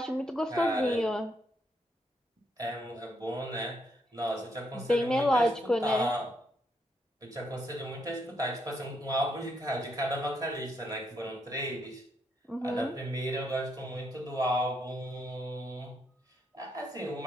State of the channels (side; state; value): both; normal; correlation 0.77